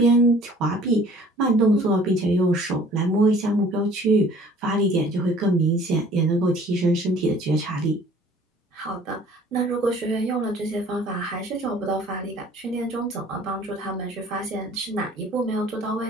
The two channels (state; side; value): normal; both; correlation 0.52